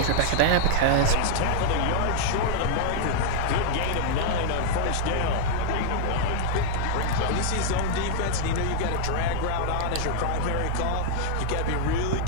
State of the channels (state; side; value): different; both; correlation 0.00